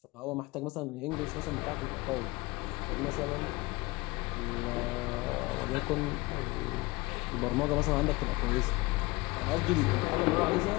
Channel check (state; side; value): quieter; right; 22.7 dB